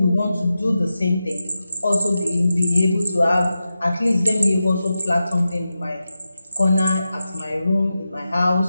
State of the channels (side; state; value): both; inverted; correlation -0.91